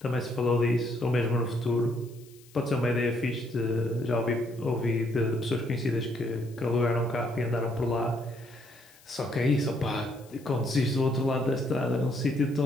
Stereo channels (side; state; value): left; noise; hiss, 26 dB below the sound